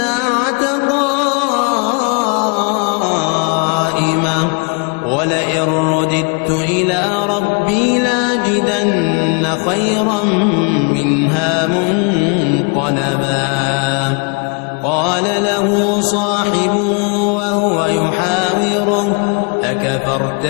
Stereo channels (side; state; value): right; quieter; 35.5 dB